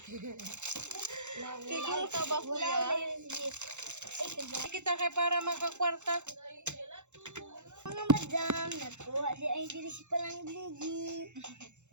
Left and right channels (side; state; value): left; late; 0.83 ms